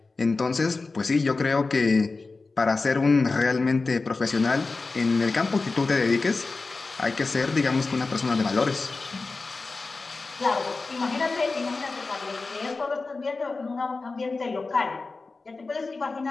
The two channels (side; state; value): right; quieter; 3.8 dB